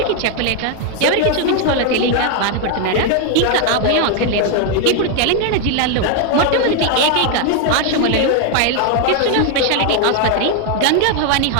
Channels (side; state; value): both; different; correlation 0.01